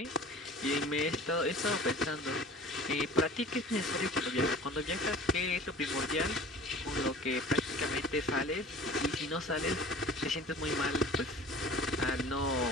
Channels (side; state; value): both; normal; correlation 0.44